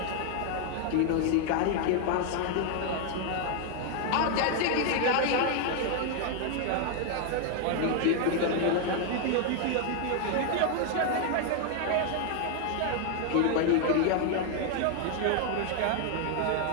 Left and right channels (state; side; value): different; both; correlation 0.00